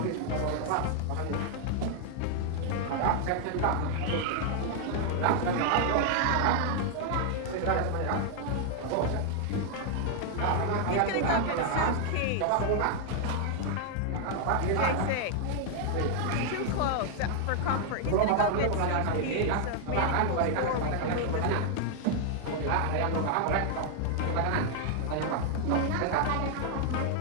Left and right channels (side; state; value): both; different; correlation 0.00